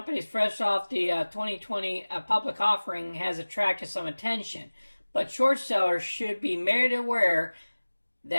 fresh off the 2020 public offering has attracted some attention. But short sellers should be made aware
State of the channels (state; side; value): inverted; both; correlation -1.00